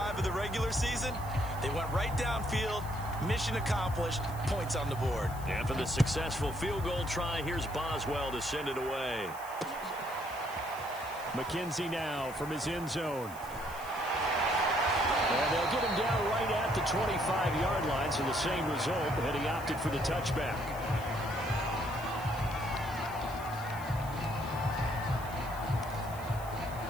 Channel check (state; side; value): noise; left; hiss, 18 dB below the sound